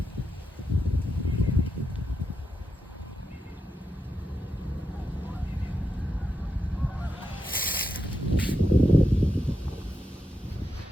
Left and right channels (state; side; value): normal; both; correlation 0.86